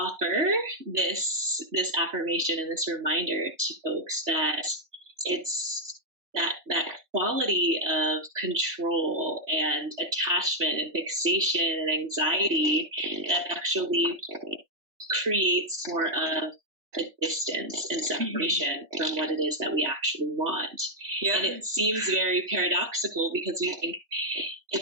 this affirmation and this reminder to folks that it's that quality of control and attachment and fixation and anxiety that actually creates more of a distance and separation from what it is that we actually want. Yeah. And it seems very paradoxical because we think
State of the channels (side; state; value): left; late; 3.1 ms